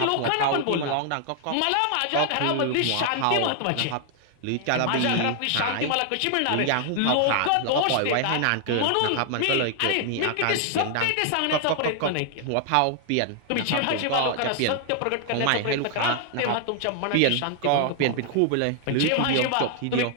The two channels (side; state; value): both; different; correlation 0.00